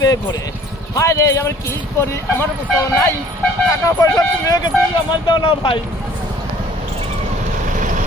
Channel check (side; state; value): both; normal; correlation 0.54